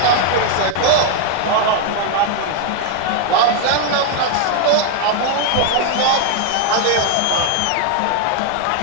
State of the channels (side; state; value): both; different; correlation 0.00